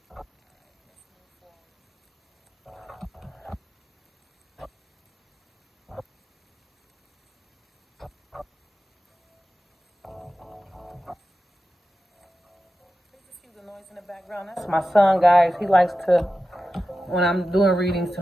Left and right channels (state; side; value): normal; both; correlation 0.93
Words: That's my son, guys. He likes to, when I'm doing readings,